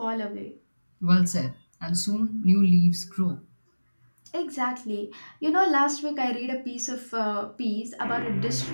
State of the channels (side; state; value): both; inverted; correlation -1.00